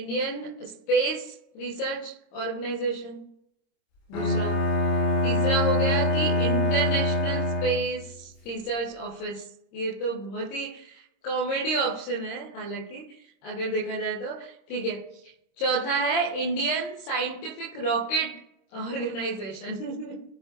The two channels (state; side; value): late; right; 26 ms